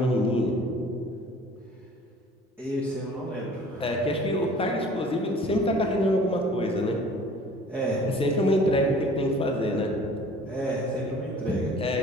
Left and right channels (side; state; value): both; normal; correlation 0.49